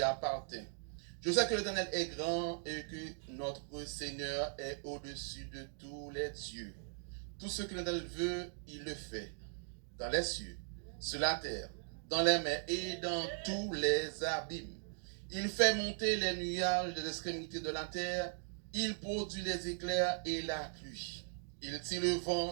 appartienne. Je sais que l'Éternel est grand et que notre Seigneur est au-dessus de tous les dieux. Tout ce que l'Éternel veut, il le fait. Dans les cieux, sur la terre, dans les mers et dans tous les abîmes. Il fait monter les nuages des extrémités de la terre. Il produit les éclairs et la pluie. Il tire le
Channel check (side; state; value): left; silent; 52 dB below the other